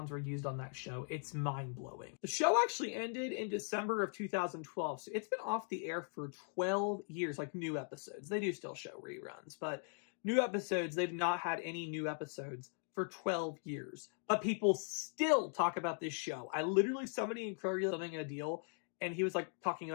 were used on that show. It's mind-blowing. The show actually ended in December of 2012, so it's been off the air for 12 years, like new episodes. They do still show reruns, but new episodes, they've not had any new episodes for 12 years. But people still talk about this show. I literally, somebody in Kroger selling a deal, and he was talking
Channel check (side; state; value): right; silent; 51 dB below the other